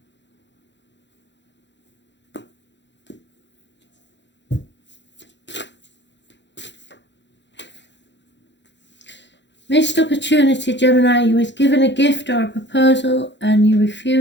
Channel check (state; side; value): late; right; 0.52 ms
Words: Missed opportunity, Gemini. You was given a gift or a proposal and you